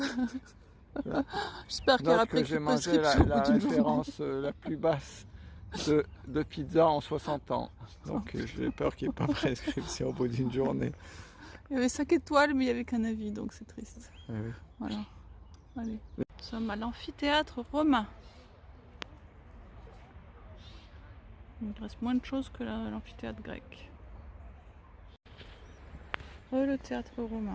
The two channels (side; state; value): both; identical; correlation 1.00